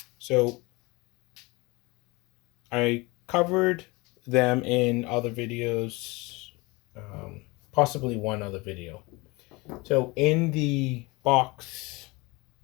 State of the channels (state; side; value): quieter; right; 24.6 dB